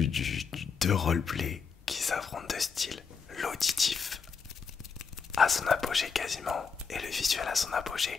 deux roleplay qui s'affrontent de style. L'auditif à son apogée quasiment et le visuel à son apogée.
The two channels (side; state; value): right; quieter; 5.7 dB